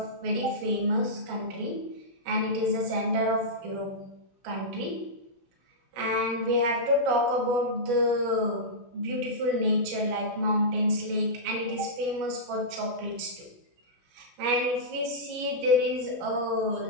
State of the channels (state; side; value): late; left; 17 ms